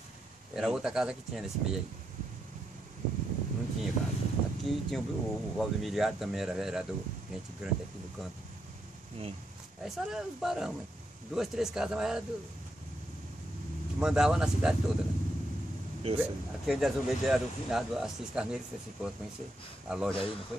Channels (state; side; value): normal; both; correlation 0.81